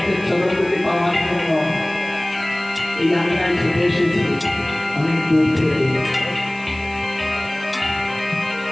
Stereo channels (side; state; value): right; noise; hiss, 24 dB below the sound